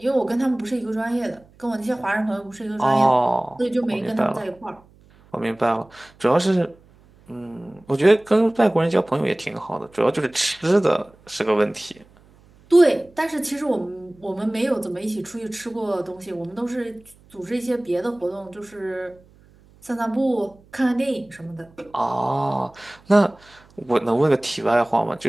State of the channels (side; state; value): right; noise; hum, 28 dB below the sound